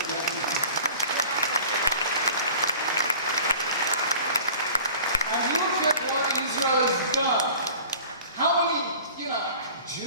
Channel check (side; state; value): both; inverted; correlation -0.43